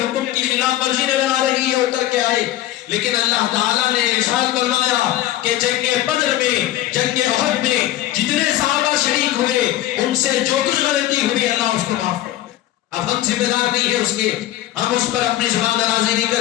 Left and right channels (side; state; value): right; quieter; 14.2 dB